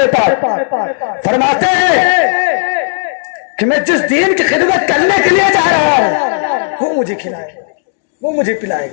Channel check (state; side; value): silent; right; digital silence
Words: پاک؟ فرماتے ہیں کہ میں جس دین کی خدمت کرنے کے لیے جا رہا ہوں وہ مجھے کھلائے گا، وہ مجھے پلائے